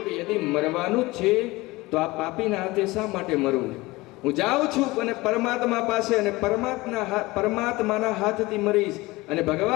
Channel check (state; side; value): quieter; right; 21.1 dB